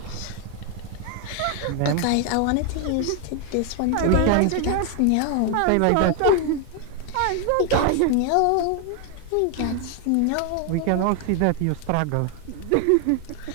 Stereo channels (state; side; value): different; both; correlation 0.01